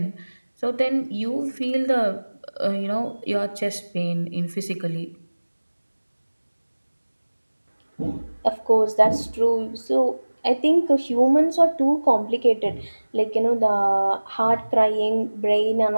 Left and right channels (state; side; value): inverted; both; correlation -1.00